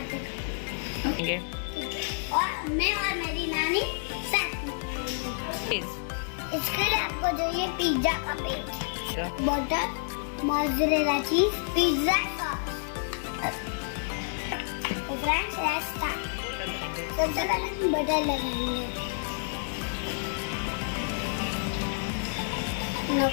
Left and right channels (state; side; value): silent; right; digital silence